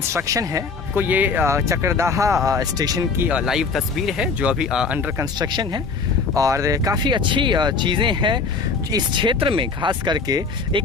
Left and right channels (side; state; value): right; quieter; 4.8 dB